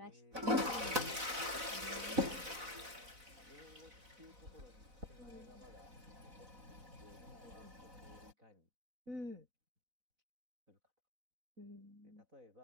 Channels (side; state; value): left; late; 4.0 ms